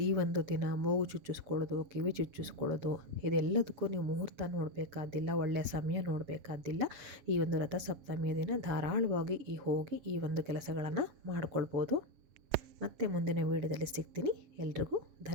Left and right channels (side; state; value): left; late; 7.3 ms